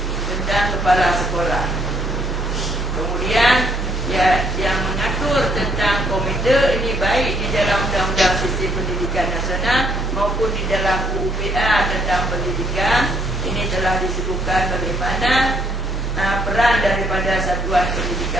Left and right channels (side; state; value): both; normal; correlation 0.67